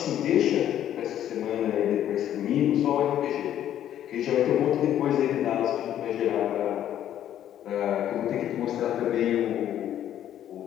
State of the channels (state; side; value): quieter; right; 11.1 dB